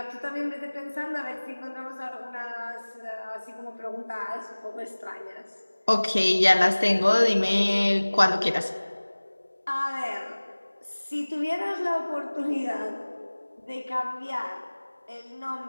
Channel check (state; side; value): inverted; both; correlation -1.00